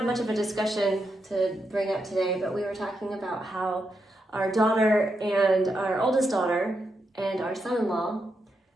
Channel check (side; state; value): both; normal; correlation 0.84